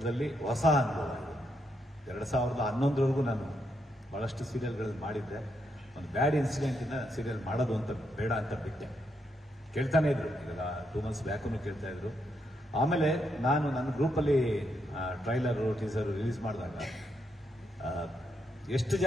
ಹೊಸ ಅನುಭವ ಇದೆ. 2011 ನಾನು ಭಾಳಷ್ಟು ಸೀರಿಯಲ್ಗಳಲ್ಲಿ ಮಾಡಿದ್ದೆ. ಒಂದು ಬ್ಯಾಡ್ ಇನ್ಸಿಡೆಂಟಿಂದ ಸೀರಿಯಲ್ ಮಾಡೋದು ಅಂತ ಬೇಡ ಅಂತ ಬಿಟ್ಟೆ. ಕೇಳ್ತಾನೆ ಇದ್ರು, ಈಗ 2 months ಬ್ಯಾಕೂ ಕೇಳ್ತಾ ಇದ್ರು. ಆಮೇಲೆ ನಾನು ನನ್ನ ಗ್ರೂಪಲ್ಲಿ ಟ್ರೈಲರು ಟೀಸರು ರಿಲೀಸ್ ಮಾಡಿದಾಗ ಎಷ್ಟು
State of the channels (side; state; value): both; normal; correlation 0.79